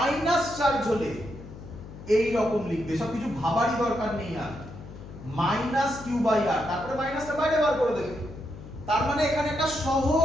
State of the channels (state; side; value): noise; left; hum, 15 dB below the sound